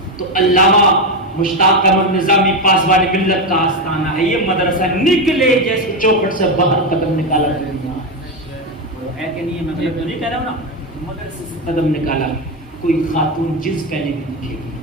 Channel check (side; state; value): both; normal; correlation 0.11